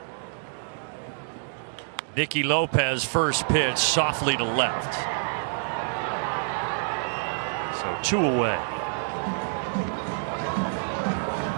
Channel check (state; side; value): silent; left; digital silence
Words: Nicky Lopez first pitch softly to left. So 2 away.